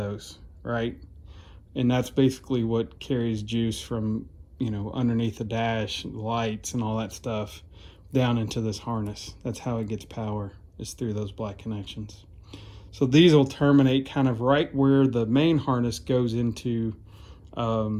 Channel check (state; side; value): identical; both; correlation 1.00